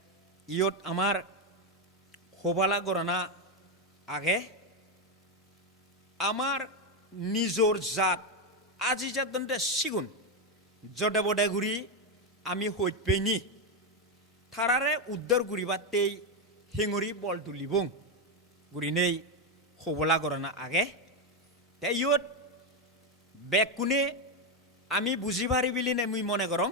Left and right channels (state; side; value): normal; both; correlation 0.06